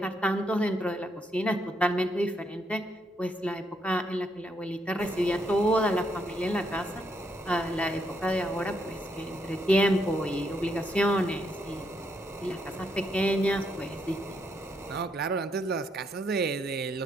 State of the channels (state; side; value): normal; both; correlation 0.76